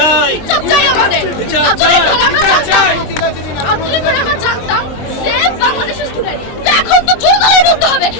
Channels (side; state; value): right; late; 23 ms